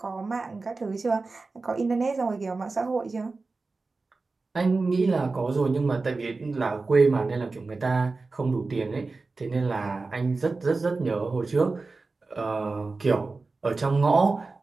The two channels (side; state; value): left; quieter; 3.8 dB